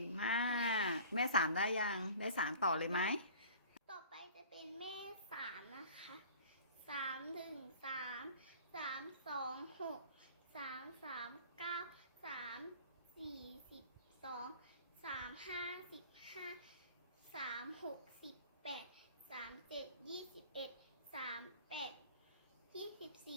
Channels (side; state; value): both; inverted; correlation -0.45